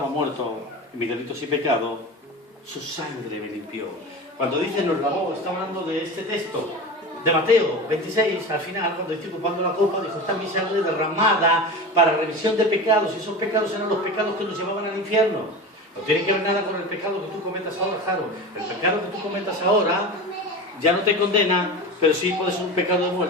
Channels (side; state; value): both; normal; correlation 0.29